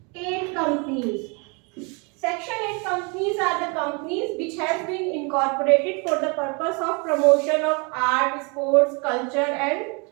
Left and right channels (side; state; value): left; quieter; 32.4 dB